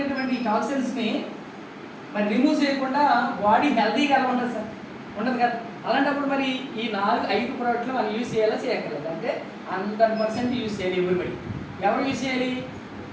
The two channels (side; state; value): both; identical; correlation 1.00